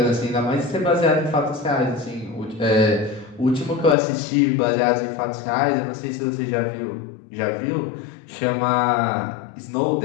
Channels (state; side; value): drops out; right; at 4.0 s